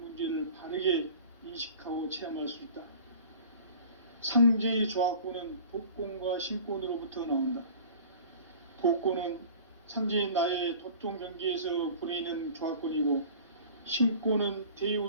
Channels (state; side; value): inverted; both; correlation -0.42